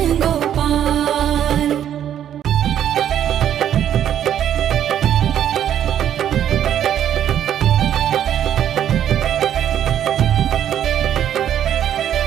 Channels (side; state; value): left; quieter; 10.3 dB